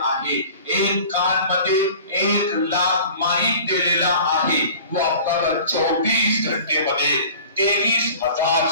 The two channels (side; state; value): both; inverted; correlation -0.43